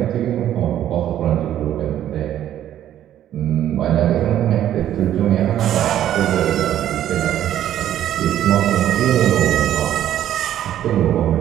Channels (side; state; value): left; quieter; 11.6 dB